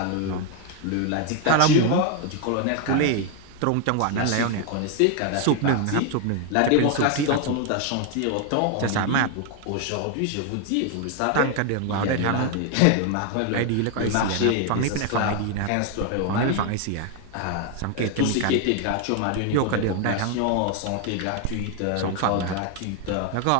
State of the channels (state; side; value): different; both; correlation 0.01